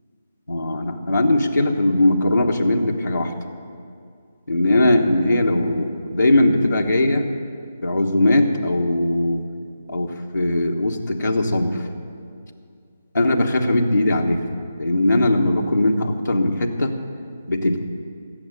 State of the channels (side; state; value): both; inverted; correlation -0.89